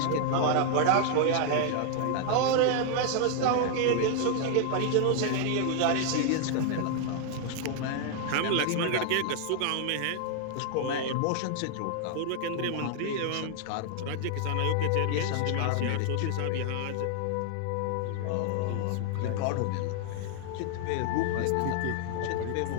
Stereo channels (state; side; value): different; both; correlation 0.00